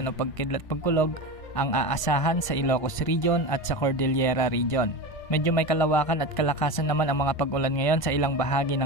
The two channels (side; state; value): right; late; 1.5 ms